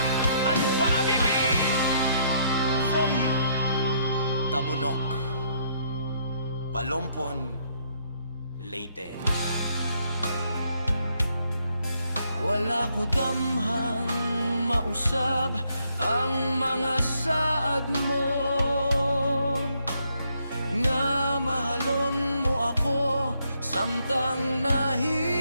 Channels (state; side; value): inverted; both; correlation -0.71